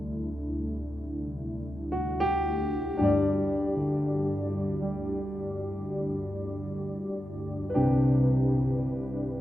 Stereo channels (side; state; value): both; normal; correlation 0.90